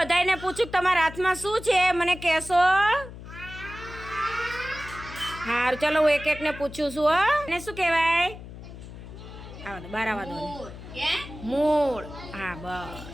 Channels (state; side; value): noise; left; hum, 14 dB below the sound